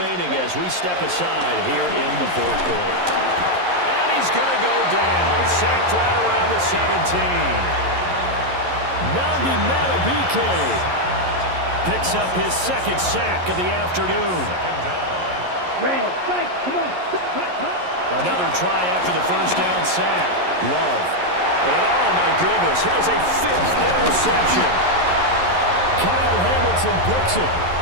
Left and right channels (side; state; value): left; late; 11 ms